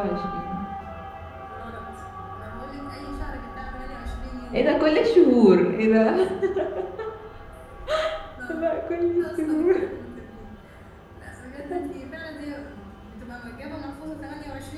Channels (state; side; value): identical; both; correlation 1.00